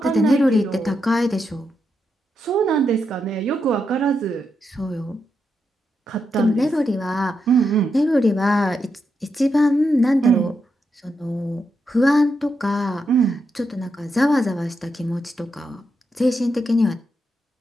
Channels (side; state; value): both; normal; correlation 0.84